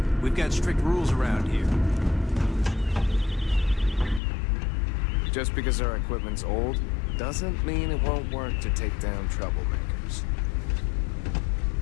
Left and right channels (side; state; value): right; drops out; at 4.2 s